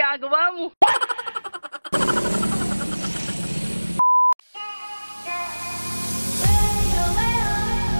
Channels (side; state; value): both; inverted; correlation -1.00